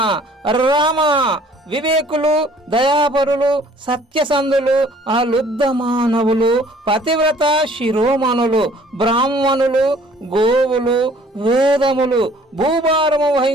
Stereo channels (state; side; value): normal; both; correlation 0.56